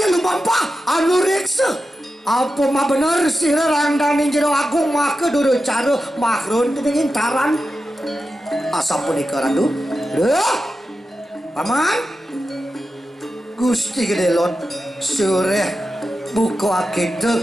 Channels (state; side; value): normal; both; correlation 0.91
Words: lumampa anu reksa. Apa mah bener sira randane jero agung make duru cara makrun dening Intaran asa punika randu. Paman Gusti Gedelot sore buka